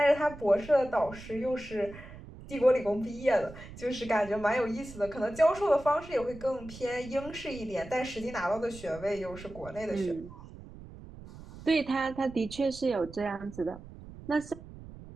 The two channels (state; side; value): noise; right; rumble, 16 dB below the sound